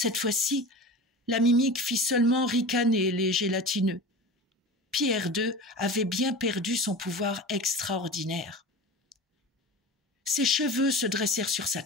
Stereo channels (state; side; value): normal; both; correlation 0.32